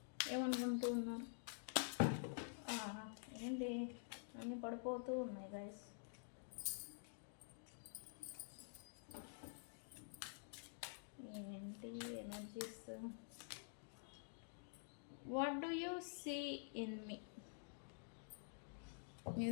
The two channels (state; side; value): silent; right; digital silence